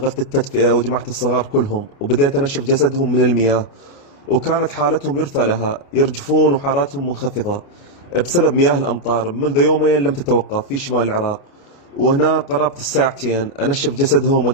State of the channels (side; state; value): right; late; 29 ms